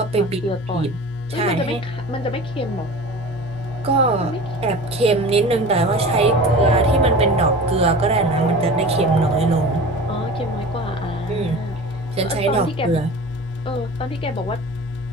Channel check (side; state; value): both; normal; correlation 0.36